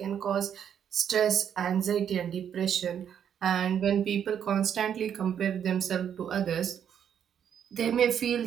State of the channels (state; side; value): quieter; left; 8.7 dB